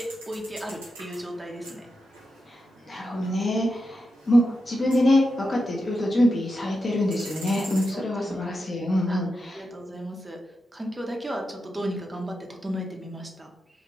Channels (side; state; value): both; normal; correlation 0.88